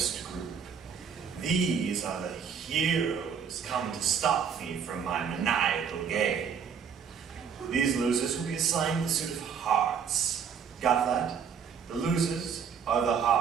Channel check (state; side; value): quieter; left; 7.0 dB